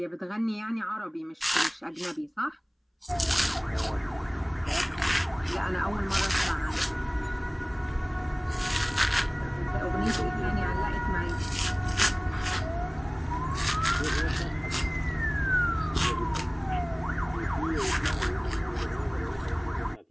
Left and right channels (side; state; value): both; identical; correlation 1.00